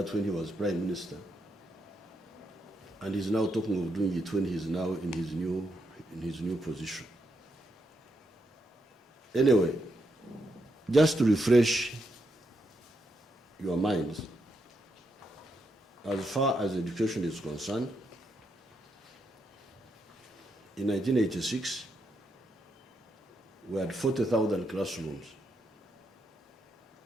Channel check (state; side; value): normal; both; correlation 0.81